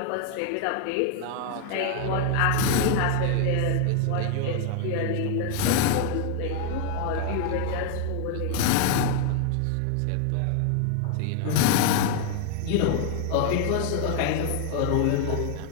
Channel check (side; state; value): both; different; correlation 0.00